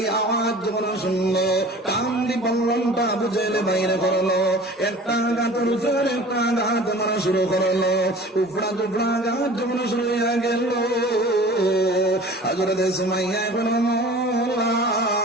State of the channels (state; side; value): normal; both; correlation 0.43